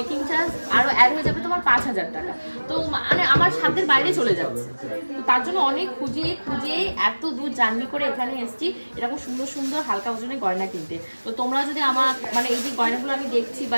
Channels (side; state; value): both; inverted; correlation -1.00